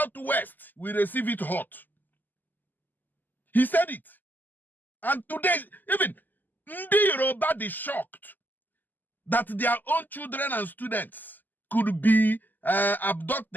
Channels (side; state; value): right; late; 0.087 ms